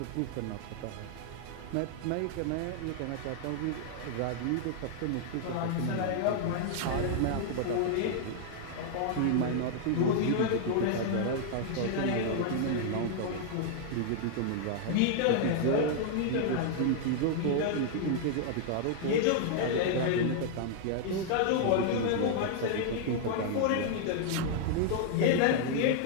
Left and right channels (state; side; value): different; both; correlation -0.01